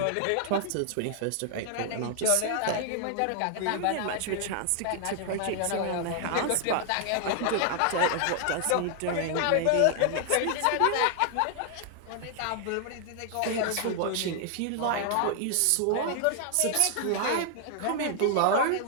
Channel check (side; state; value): both; different; correlation 0.00